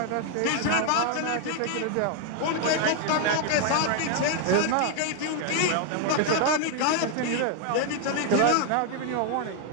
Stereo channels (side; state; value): both; different; correlation 0.00